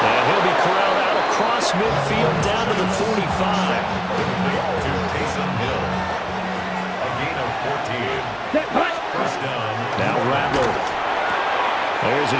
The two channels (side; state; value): both; identical; correlation 1.00